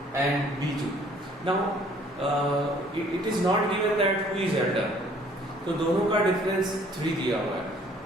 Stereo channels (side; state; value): both; normal; correlation 0.58